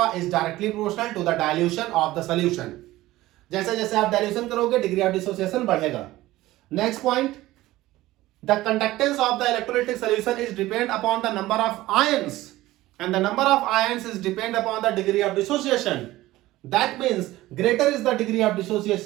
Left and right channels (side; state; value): left; quieter; 17.0 dB